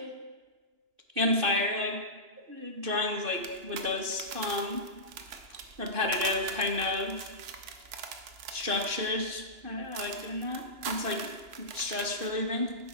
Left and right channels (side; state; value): left; late; 2.9 ms